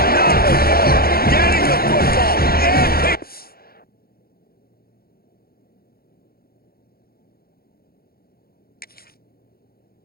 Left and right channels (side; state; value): right; late; 0.44 ms